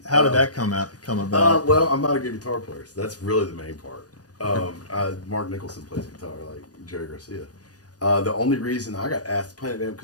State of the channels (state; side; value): late; right; 0.68 ms